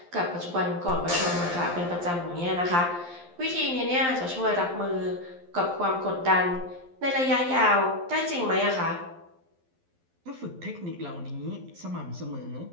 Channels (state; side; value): late; left; 11 ms